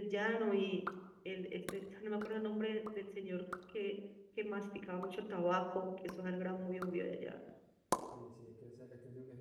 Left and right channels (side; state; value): both; identical; correlation 1.00